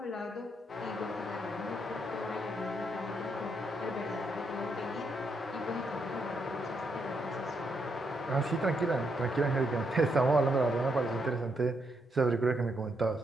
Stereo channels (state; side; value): normal; both; correlation 0.78